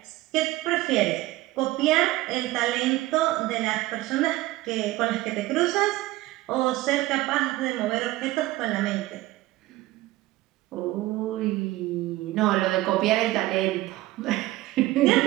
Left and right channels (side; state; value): left; quieter; 17.7 dB